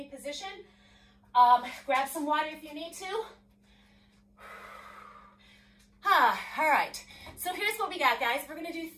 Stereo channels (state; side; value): identical; both; correlation 1.00